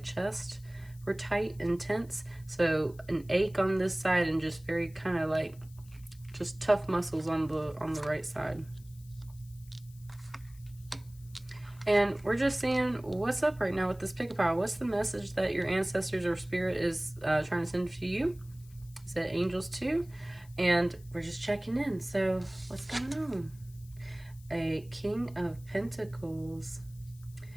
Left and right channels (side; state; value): left; noise; hiss, 25 dB below the sound